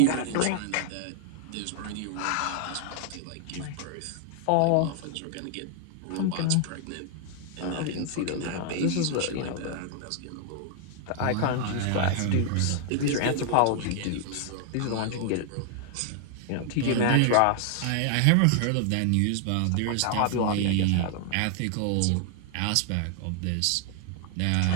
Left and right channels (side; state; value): both; different; correlation 0.00